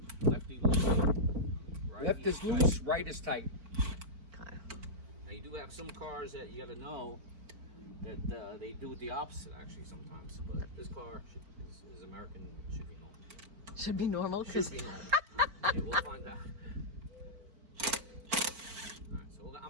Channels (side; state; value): left; late; 4.5 ms